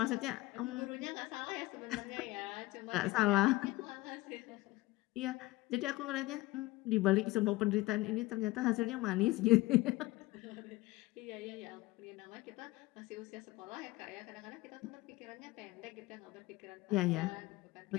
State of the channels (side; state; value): right; quieter; 19.7 dB